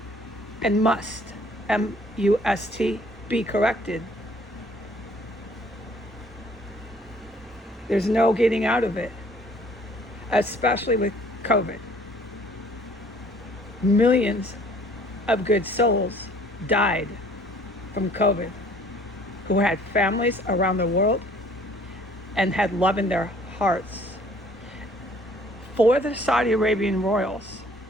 and must, M-U-S-T, be corrected. There's no getting out of it, especially with COVID. Millions of good souls died from COVID, who had families around the world and had love in their hearts. For the Saudi Arabian royals,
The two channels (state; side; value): normal; both; correlation 0.57